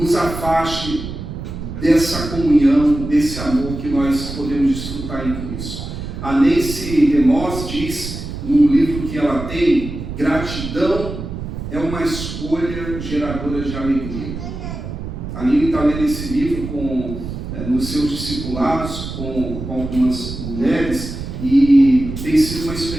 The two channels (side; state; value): right; noise; rumble, 8 dB below the sound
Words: afaste dessa comunhão, desse amor que nós podemos desfrutar em Cristo. A Nancy DeMoss diz, num livro que ela tem, gratidão é uma escolha geradora de alegria. A Nini está lendo esse livro nos seus discipulados, com algumas mulheres, e tem sido uma